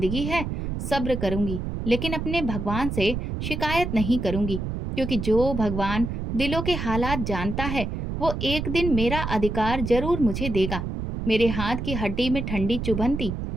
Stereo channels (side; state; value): right; noise; rumble, 4 dB below the sound